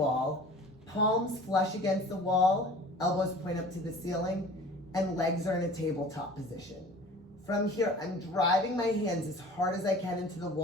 palms flush against the wall, elbows point up to the ceiling, and legs are in a tabletop position. From here, I'm driving my hands as hard as I can into the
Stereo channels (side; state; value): both; normal; correlation 0.44